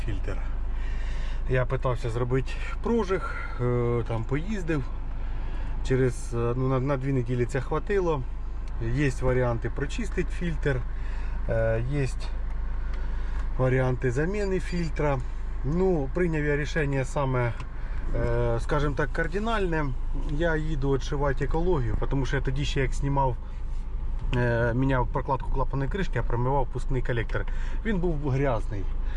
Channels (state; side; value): identical; both; correlation 1.00